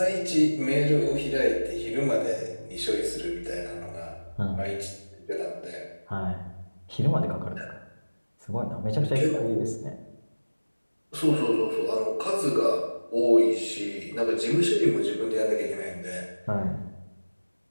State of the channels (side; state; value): both; inverted; correlation -1.00